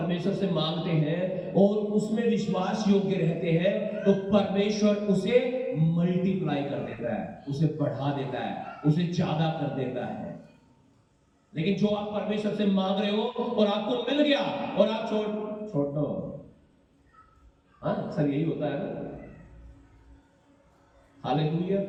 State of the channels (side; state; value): both; identical; correlation 1.00